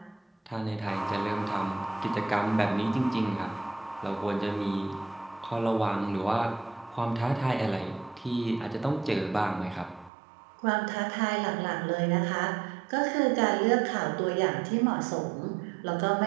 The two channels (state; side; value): drops out; left; at 10.1 s